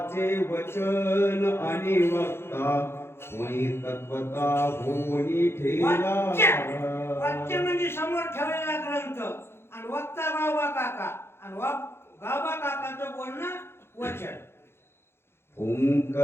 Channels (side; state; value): right; late; 0.12 ms